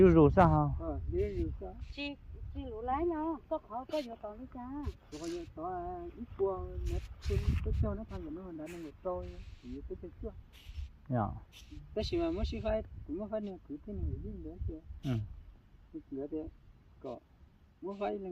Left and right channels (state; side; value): identical; both; correlation 1.00